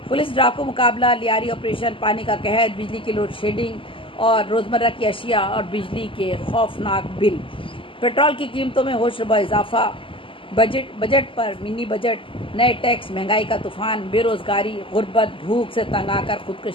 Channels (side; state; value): right; late; 0.25 ms